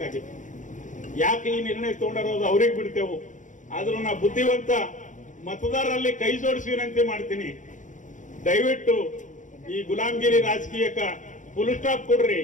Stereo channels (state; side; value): late; right; 0.37 ms